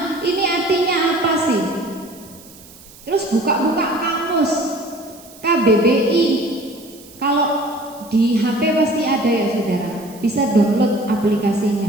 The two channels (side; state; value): right; noise; hiss, 22 dB below the sound